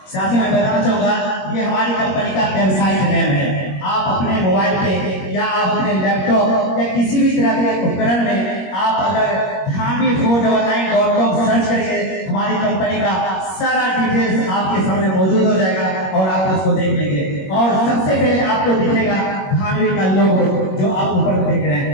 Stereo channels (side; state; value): right; late; 21 ms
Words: साथियों, मैं बताना चाहूंगा, ये हमारी कंपनी का वेबसाइट नेम है। आप अपने मोबाइल पे या आप अपने लैपटॉप या किसी भी तरह के उपकरण में आप अगर Dhanvi499.com सर्च करेंगे, हमारी कंपनी का सारा डिटेल्स आपके सामने मौजूद हो जाएगा और आप उसको देख लेंगे। और सबसे पहले आपको दिखेगा धानवी का लोगो, जो आप ऊपर देख रहे